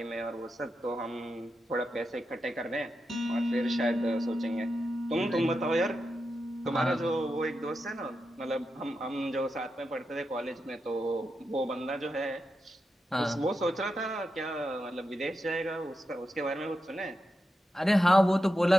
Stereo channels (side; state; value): both; normal; correlation 0.88